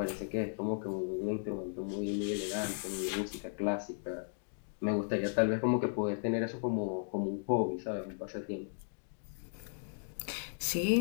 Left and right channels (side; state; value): right; silent; digital silence